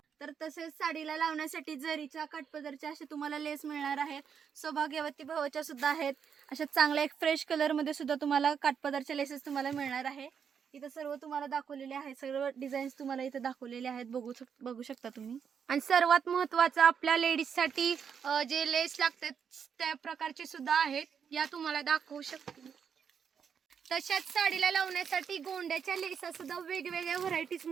तर तसेच साडीला लावण्यासाठी जरीच्या, काठपदरच्या असे तुम्हाला लेस मिळणार आहेत. सौभाग्यवती भावाच्या सुद्धा आहेत. अशा चांगल्या एक फ्रेश कलर मध्ये सुद्धा तुम्हाला काठपदरच्या लेसेस तुम्हाला मिळणार आहे. इथं सर्व तुम्हाला दाखवलेले आहेत. सर्व डिझाईन्स तुम्हाला इथं दाखवलेले आहेत, बघू शकता तुम्ही. आणि सर्वात महत्वाचं आपल्या लेडीज साठी जे लेस लागतात त्या प्रकारचे सुद्धा आहेत. या तुम्हाला दाखवू शकते. तशाच साडीला लावण्यासाठी गोंड्याच्या लेसा सुद्धा वेगवेगळ्या व्हरायटीज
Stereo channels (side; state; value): left; quieter; 7.2 dB